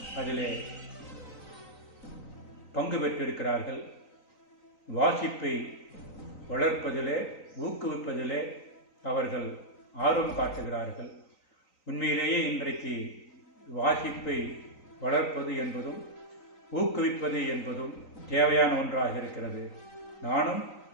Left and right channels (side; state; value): right; late; 3.9 ms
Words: அதிலே பங்கு பெற்றிருக்கிறார்கள். வாசிப்பை வளர்ப்பதிலே, ஊக்குவிப்பதிலே அவர்கள் ஆர்வம் காட்டுகிறார்கள். உண்மையிலேயே இன்றைக்கு வாசிப்பை வளர்ப்பது என்பதும் ஊக்குவிப்பது என்பதும் தேவையான ஒன்றாக இருக்கிறது. நானும்